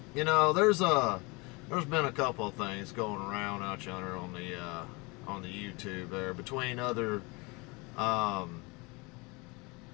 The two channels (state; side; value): quieter; right; 26.9 dB